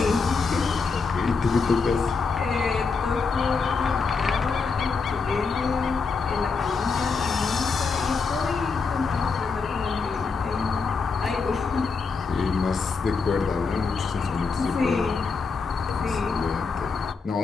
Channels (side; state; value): right; quieter; 4.8 dB